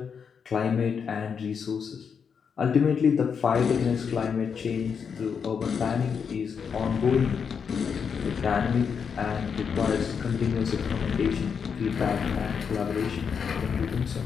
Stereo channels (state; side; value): quieter; right; 6.6 dB